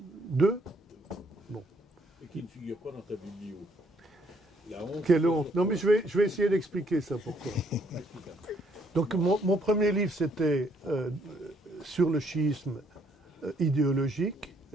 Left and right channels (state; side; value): normal; both; correlation 0.68